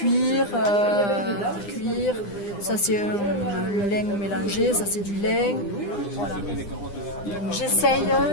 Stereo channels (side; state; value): right; late; 9.9 ms